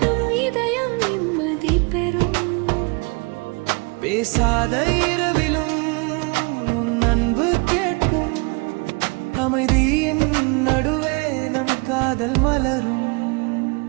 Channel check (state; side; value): quieter; left; 30.5 dB